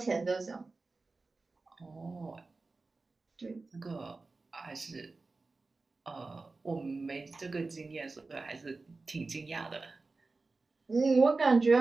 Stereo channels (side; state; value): left; quieter; 3.7 dB